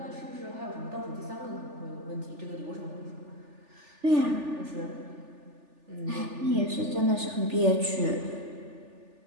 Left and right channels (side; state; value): left; late; 3.4 ms